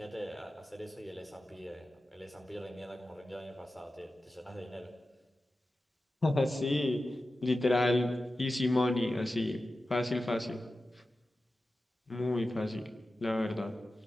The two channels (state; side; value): normal; both; correlation 0.93